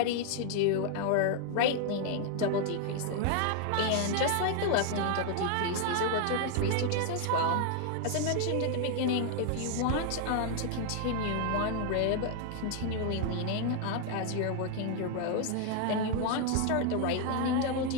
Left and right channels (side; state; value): both; different; correlation 0.00